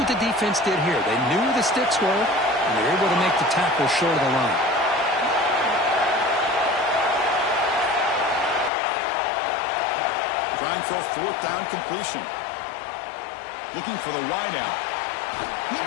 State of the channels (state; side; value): drops out; right; at 8.7 s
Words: the defense did here. They knew where the sticks were, and they were able to make the tackle short of the line. Trying for a fourth down completion. Looking for the wideout. He